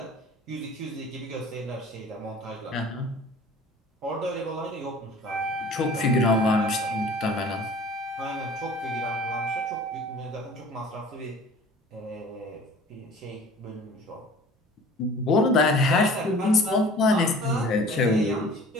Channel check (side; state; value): both; normal; correlation 0.45